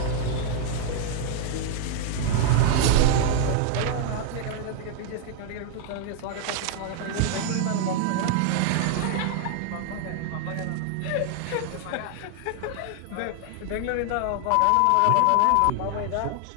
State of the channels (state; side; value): different; both; correlation 0.00